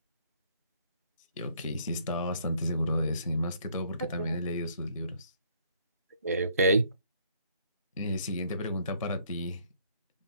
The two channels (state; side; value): inverted; both; correlation -0.64